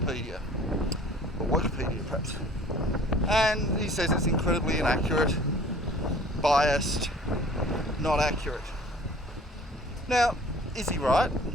or Wikipedia perhaps, and he says it's incredibly inaccurate, biased, not accurate. Now, is he right?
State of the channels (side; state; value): both; normal; correlation 0.50